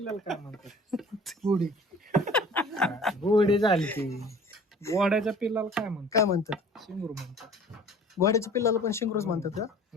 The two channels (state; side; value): normal; both; correlation 0.47